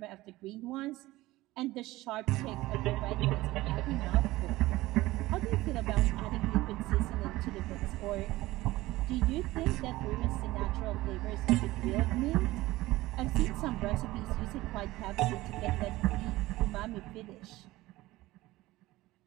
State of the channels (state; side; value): quieter; left; 18.2 dB